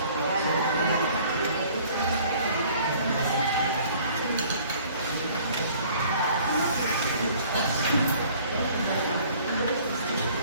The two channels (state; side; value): inverted; both; correlation -0.54